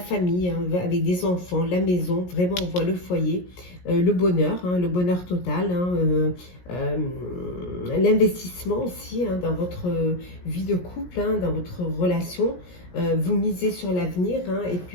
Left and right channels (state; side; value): late; right; 17 ms